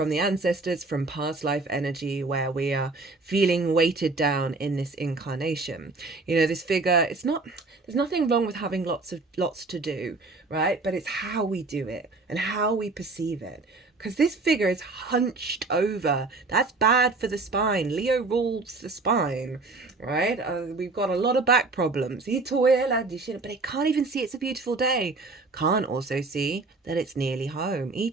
the ancestors, from past life energy, where we are feeling weighted down in this incarnation. You know, this figure, there's nothing wrong with having lots to do, right? But it's how we do it and how we perceive it. because this figure is hunched over. That's bad for the spine. Leo rules the spine, right? We've got a lot of back problems. But it can't even see it's a beautiful day. Can't also see that it's nearly home.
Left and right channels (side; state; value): left; quieter; 3.6 dB